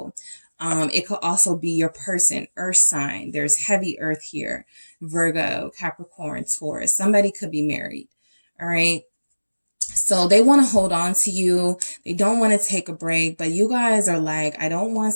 It could also be your person, earth sign. There's heavy earth here. Virgo, Capricorn, Taurus. Somebody could be married. All right. So they want to hold on to you. They don't want to take a break, but you guys are like, I don't want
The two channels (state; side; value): inverted; both; correlation -1.00